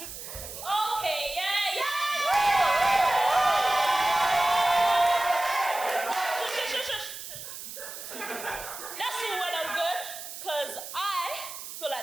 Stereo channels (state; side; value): noise; right; hiss, 10 dB below the sound